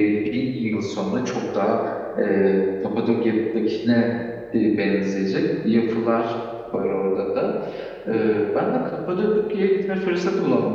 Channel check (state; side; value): identical; both; correlation 1.00